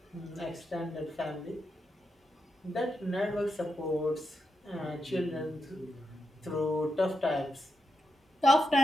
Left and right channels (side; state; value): both; normal; correlation 0.85